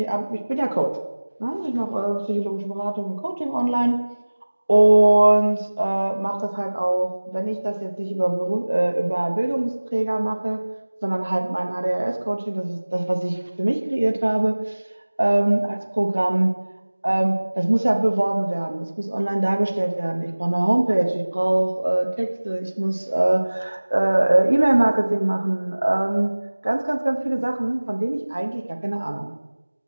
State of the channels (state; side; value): inverted; both; correlation -1.00